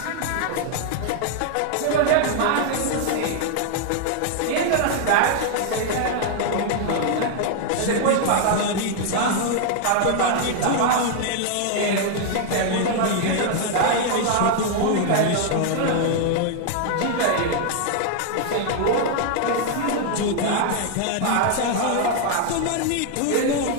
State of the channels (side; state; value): both; different; correlation 0.00